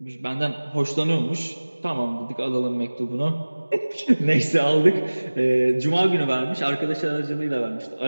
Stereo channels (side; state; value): both; inverted; correlation -1.00